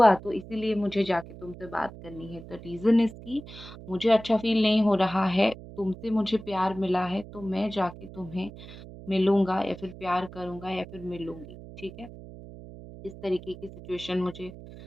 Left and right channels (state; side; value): noise; right; hum, 15 dB below the sound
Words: तो इसीलिए मुझे जाके तुमसे बात करनी है। द रीज़न इज़ कि मुझे अच्छा फ़ील नहीं हो रहा है, तुमसे मुझे प्यार मिला है तो मैं जाके तुम्हें मिलूँगा या फिर प्यार करूँगा या फिर मिलूँगी, ठीक है? इस तरीके की सिचुएशन मुझे